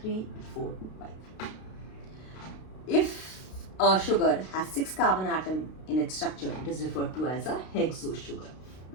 3, 4, 5. If a sugar has 6 carbon atom in its structure, it is referred to as a hexose sugar.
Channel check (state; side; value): late; right; 32 ms